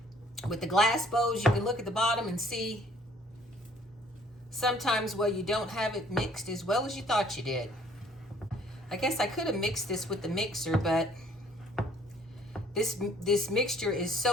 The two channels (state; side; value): normal; both; correlation 0.59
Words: with the glass bowls, you can look at the bottom and see sometimes where you don't have it mixed as well as you thought you did. I guess I could have mixed this with the mixer, but this mixture is